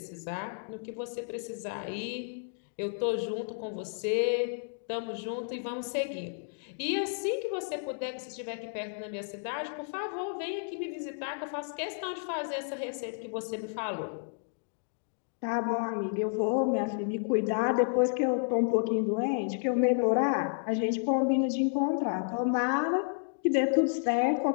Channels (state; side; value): silent; right; digital silence